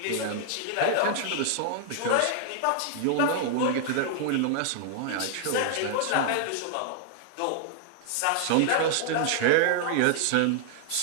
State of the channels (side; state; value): both; different; correlation -0.01